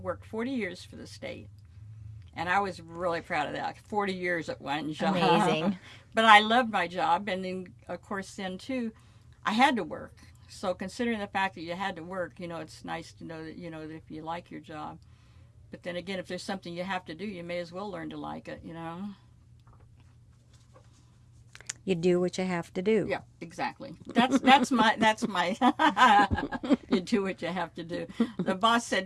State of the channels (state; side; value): identical; both; correlation 1.00